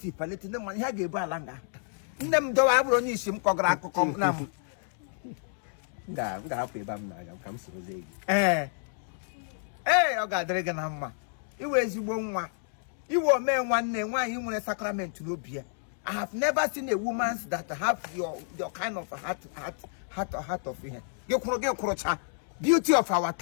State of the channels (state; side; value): silent; right; 58 dB below the other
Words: ndị mmadụ ihe ga-ebu ala nga nne m dowe abụrụ onye isi m kọgara akụkọ na m ga-hapụ ebe m na-aga ka m soro gị ọ ga-adịrị gị na mma iwe ezigbo nwa iwe omee nwanne nwaanyị nwere sakrament n'obi ya I have never seen a woman that have your kind of heart of here. Beauty of our